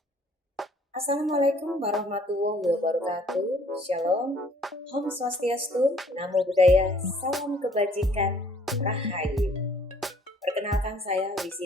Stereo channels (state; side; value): normal; both; correlation 0.58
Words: warahmatullahi wabarakatuh. Shalom, Om Swastiastu, Namo Buddhaya, Salam Kebajikan, Rahayu. Perkenalkan saya